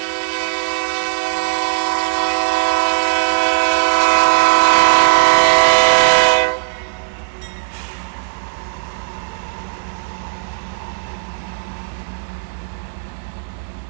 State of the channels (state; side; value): silent; left; 68 dB below the other